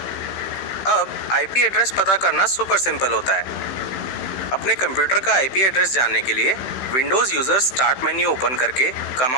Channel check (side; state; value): right; late; 16 ms